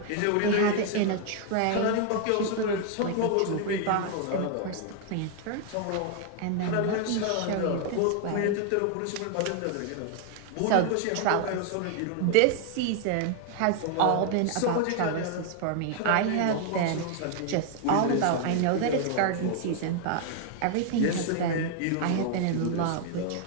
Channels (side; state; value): both; different; correlation 0.00